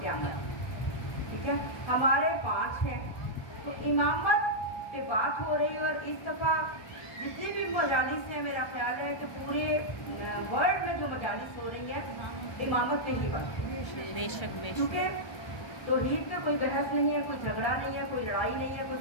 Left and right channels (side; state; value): right; late; 1.3 ms